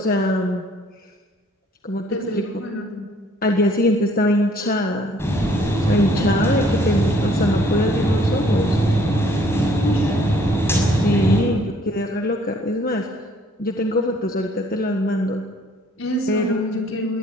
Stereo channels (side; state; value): both; normal; correlation 0.61